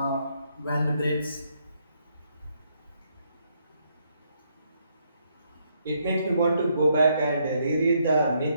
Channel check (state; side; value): inverted; both; correlation -0.74